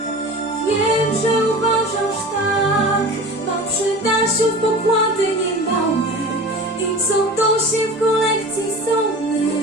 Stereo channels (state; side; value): normal; both; correlation 0.35